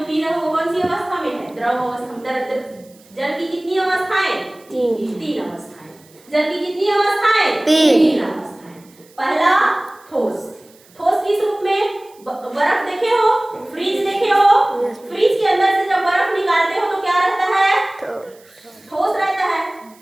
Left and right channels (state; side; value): noise; right; hiss, 28 dB below the sound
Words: रहे हो कौन सी अवस्था में है? द्रव अवस्था। जल की कितनी अवस्थाएं? तीन अवस्थाएं। जल की कितनी अवस्थाएं? तीन अवस्थाएं। पहला ठोस। ठोस किस रूप में? बर्फ देखे हो, फ्रीज देखे हो, फ्रीज के अंदर से जब बर्फ निकालते हो तो क्या रहता है? ठोस रहता है।